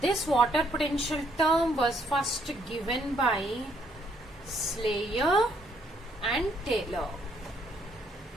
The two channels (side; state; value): both; normal; correlation 0.69